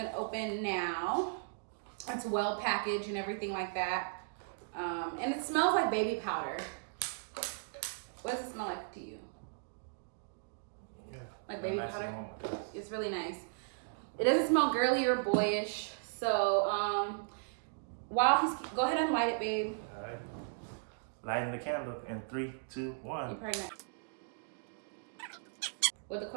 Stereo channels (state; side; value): silent; left; digital silence